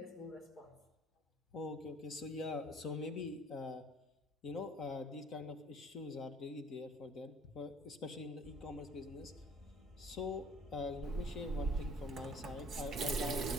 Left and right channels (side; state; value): both; normal; correlation 0.54